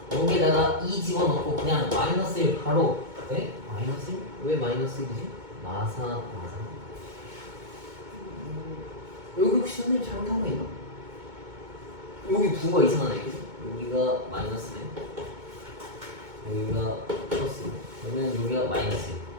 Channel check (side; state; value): left; late; 2.2 ms